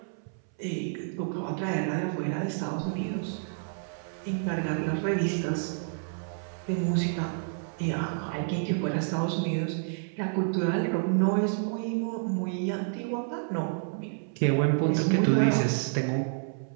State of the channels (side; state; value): left; silent; 58 dB below the other